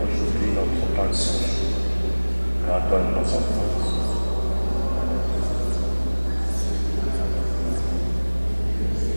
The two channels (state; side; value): inverted; both; correlation -1.00